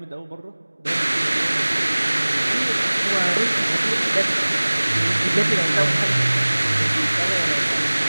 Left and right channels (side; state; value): both; inverted; correlation -1.00